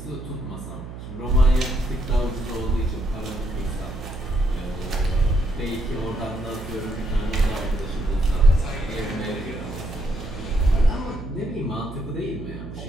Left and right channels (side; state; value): right; noise; hum, 11 dB below the sound